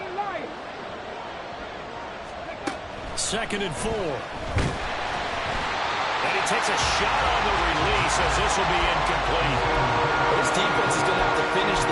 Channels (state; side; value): identical; both; correlation 1.00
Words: Lions. Second and 4. And he takes a shot on the release as this will be incomplete. This defense is going to have to finish